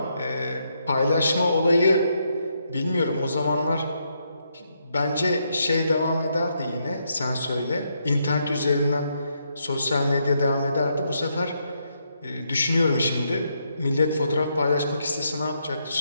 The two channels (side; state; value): both; inverted; correlation -0.78